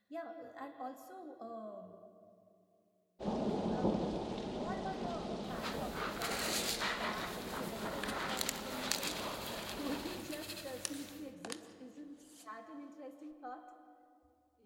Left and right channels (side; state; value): both; identical; correlation 1.00